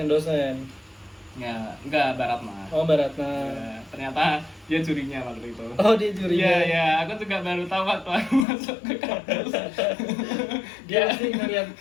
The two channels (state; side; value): drops out; right; at 8.5 s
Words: Ya, enggak, Baratna. Baratna. Ya, ternyata dia jurinya waktu itu. Dia jurinya. Iya, aku juga baru tahu waktu aku masuk ke kampus. Dia pasti ngeliat